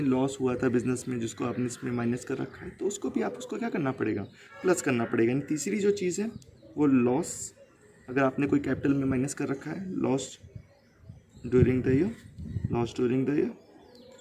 लॉस हुआ था बिजनेस में, जिसको आपने इसमें माइनस कर रखा है, तो उसको भी आपको क्या करना पड़ेगा, प्लस करना पड़ेगा। यानी तीसरी जो चीज़ है वो लॉस, अगर आपने कोई कैपिटल में माइनस कर रखा है, लॉस ड्यूरिंग द ईयर,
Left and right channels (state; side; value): identical; both; correlation 1.00